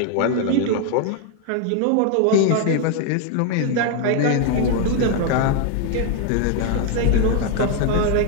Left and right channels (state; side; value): different; both; correlation 0.01